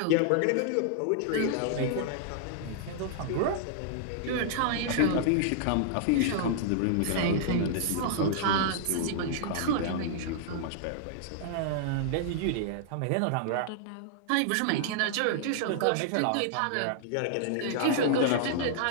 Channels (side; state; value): both; different; correlation -0.01